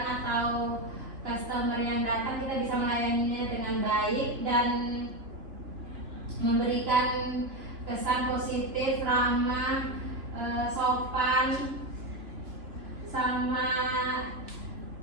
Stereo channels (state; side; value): late; left; 2.9 ms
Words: atau customer yang datang, kita bisa melayaninya dengan baik dan memberikan kesan positif, ramah, sopan, sama